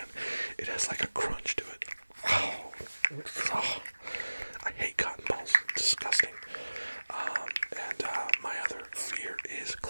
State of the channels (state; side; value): inverted; both; correlation -1.00